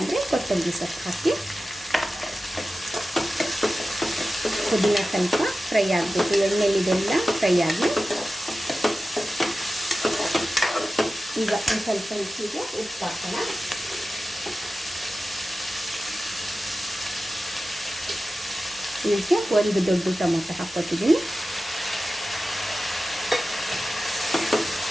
ಕೊತ್ತಂಬರಿ ಸೊಪ್ಪು ಹಾಕಿ. ಪುದೀನ ಸ್ವಲ್ಪ ಫ್ರೈ ಆಗಬೇಕು, ಎಣ್ಣೆಲಿದೆಲ್ಲ ಫ್ರೈ ಆಗಿ. ಈಗ ಒಂದು ಸ್ವಲ್ಪ ರುಚಿಗೆ ಉಪ್ಪು ಹಾಕೋಣ. ಇದಕ್ಕೆ 1 ದೊಡ್ಡ ಟೊಮೊಟೊ ಹಾಕ್ಕೊತಿದ್ದೀನಿ.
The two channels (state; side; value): normal; both; correlation 0.94